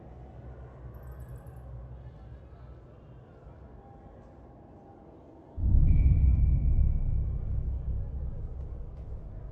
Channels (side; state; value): both; identical; correlation 1.00